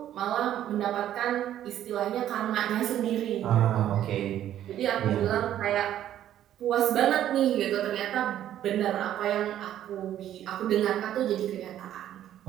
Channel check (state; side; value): quieter; left; 11.6 dB